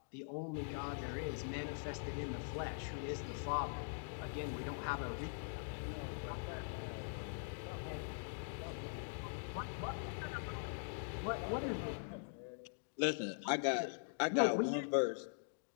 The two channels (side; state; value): right; silent; digital silence